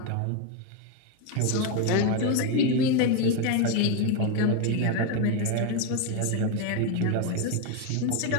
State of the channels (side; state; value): both; different; correlation 0.02